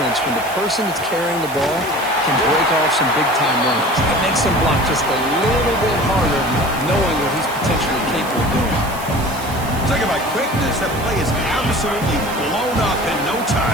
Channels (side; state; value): right; noise; hiss, 15 dB below the sound